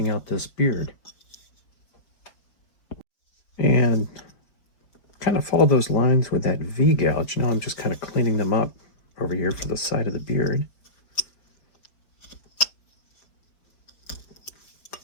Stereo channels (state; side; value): late; right; 5.0 ms